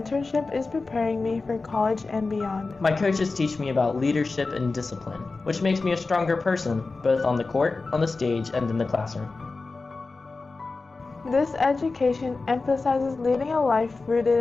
is preparing me for college and beyond. My coaches teach me about leadership and discipline, which makes me a stronger person, both on the court, on the stage, and in the classroom. This education emphasizes leading a life rooted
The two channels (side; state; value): right; quieter; 3.8 dB